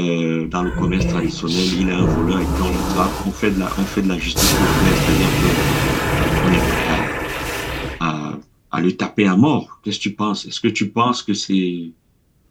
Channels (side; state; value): both; identical; correlation 1.00